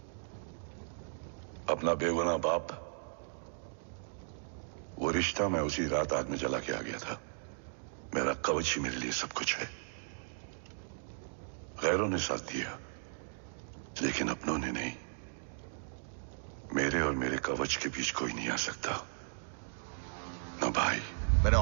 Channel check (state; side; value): silent; left; digital silence